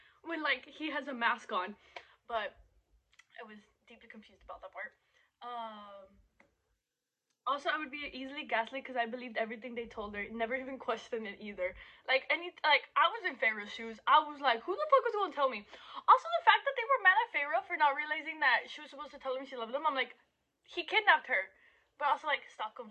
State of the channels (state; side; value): identical; both; correlation 1.00